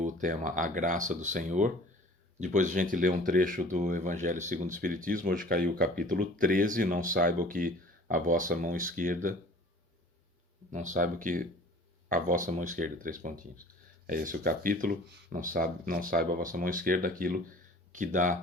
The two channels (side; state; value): both; normal; correlation 0.47